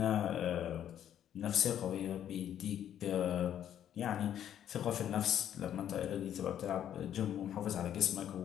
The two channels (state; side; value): quieter; right; 10.3 dB